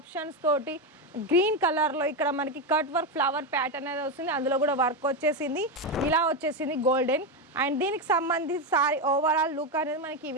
తోటి గ్రీన్ కలర్లో ఇక్కడ మనకి కట్ వర్క్ ఫ్లవర్ ప్యాటర్న్ అనేది వస్తుంది. అందులో కూడా వర్క్ వచ్చేసింది, ఇలా వచ్చేసింది గోల్డెన్. అండ్ దీనికి సంబంధించి సారీ ఓవరాల్ లుక్ అనేది మనకి ఈ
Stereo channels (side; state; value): both; normal; correlation 0.10